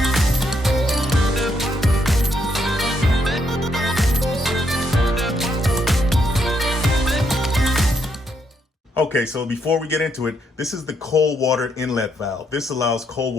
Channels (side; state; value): both; normal; correlation 0.76